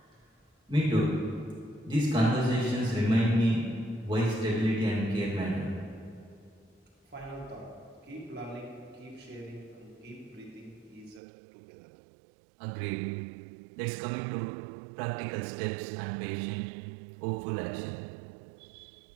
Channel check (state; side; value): drops out; left; at 11.2 s